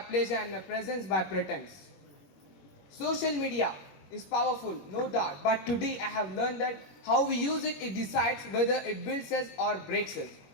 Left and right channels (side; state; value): right; late; 21 ms